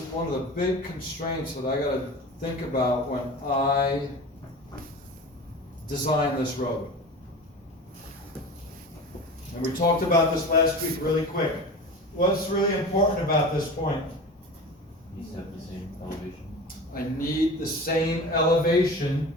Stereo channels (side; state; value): both; normal; correlation 0.33